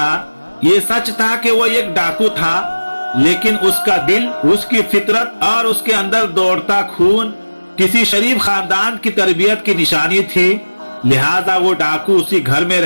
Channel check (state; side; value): inverted; both; correlation -1.00